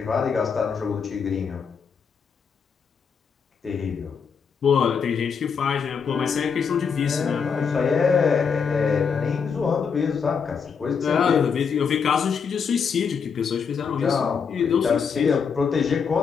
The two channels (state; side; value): quieter; right; 6.2 dB